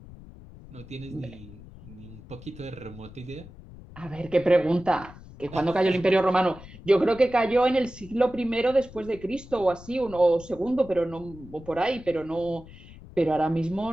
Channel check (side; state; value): left; noise; rumble, 18 dB below the sound